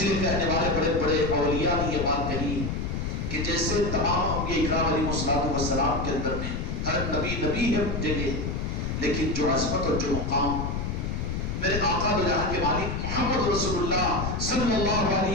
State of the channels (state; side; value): noise; left; rumble, 2 dB below the sound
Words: لیے کہنے والے بڑے بڑے اولیاء نے یہ بات کہی کہ جیسے تمام انبیاء اکرام علیہ السلام کے اندر میں ہر نبی نبی ہے جگہ، لیکن جو عظمت اور جو مقام میرے آقا دو جہاں کے مالک محمد رسول اللہ صلی اللہ